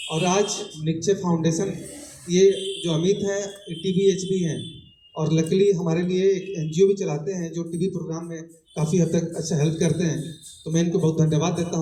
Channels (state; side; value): identical; both; correlation 1.00